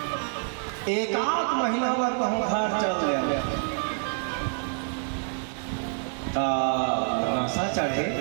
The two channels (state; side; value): silent; left; 60 dB below the other